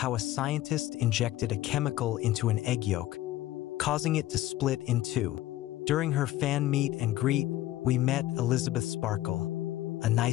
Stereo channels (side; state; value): right; quieter; 15.2 dB